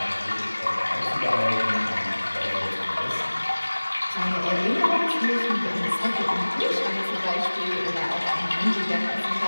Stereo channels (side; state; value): both; inverted; correlation -1.00